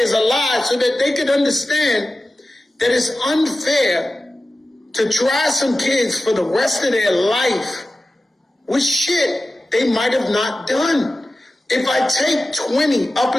a lie so that they could understand that it's unfair to try some kids for the rest of their life with shit they might have not done. If I take 20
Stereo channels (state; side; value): normal; both; correlation 0.94